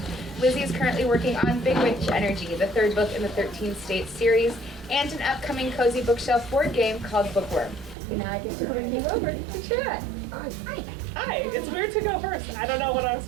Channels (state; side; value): drops out; left; at 8.0 s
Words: Lizzie is currently working on Big Witch Energy, the 3rd book in the 13 States series, and an upcoming cozy bookshelf board game called Bookworm. And now I get to bring you over to chat. Hi. Hi, it's weird to go first. I don't know what I'm